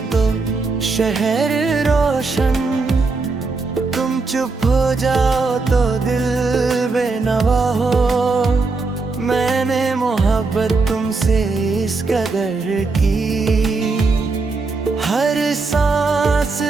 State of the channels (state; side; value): quieter; left; 3.9 dB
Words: तो शहर रोशन, तुम चुप हो जाओ तो दिल बेनवा हो। मैंने मोहब्बत तुमसे इस कदर की, हर सांस